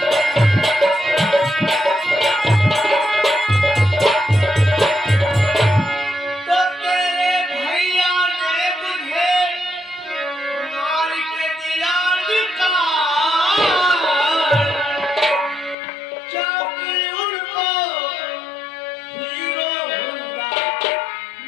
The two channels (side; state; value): right; drops out; at 15.8 s